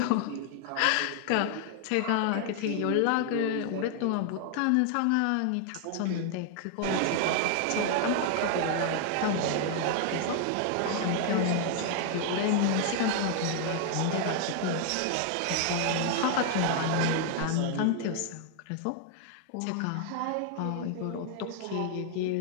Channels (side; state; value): both; different; correlation 0.00